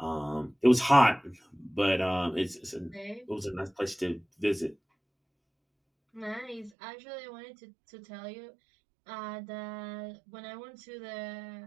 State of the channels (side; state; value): left; drops out; at 6.7 s